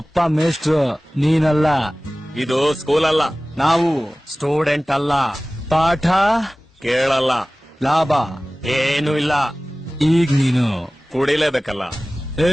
ಮೇಷ್ಟ್ರು, ನೀನಲ್ಲ. ಇದು ಸ್ಕೂಲ್ ಅಲ್ಲ. ನಾವು ಸ್ಟೂಡೆಂಟ್ ಅಲ್ಲ. ಪಾಠ ಕೇಳಲ್ಲ. ಲಾಭ ಏನು ಇಲ್ಲ. ಈಗ ನೀನು ಕುಡಿಲೇಬೇಕಲ್ಲ.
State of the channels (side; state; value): both; normal; correlation 0.98